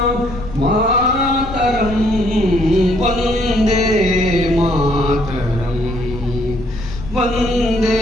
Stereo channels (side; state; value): left; noise; rumble, 11 dB below the sound